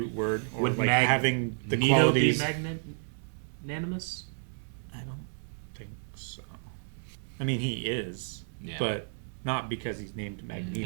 word, or would like having the Nito qualities. Be magnanimous? I don't think so. I mean, he is, Yeah. but not because he's named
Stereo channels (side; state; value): left; silent; digital silence